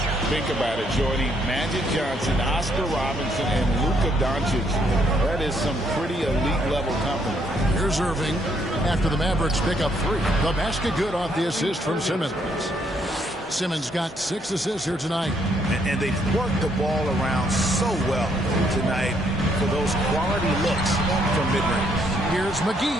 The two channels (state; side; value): normal; both; correlation 0.71